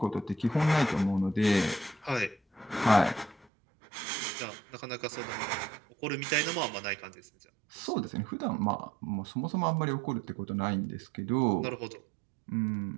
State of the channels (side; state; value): left; drops out; at 3.5 s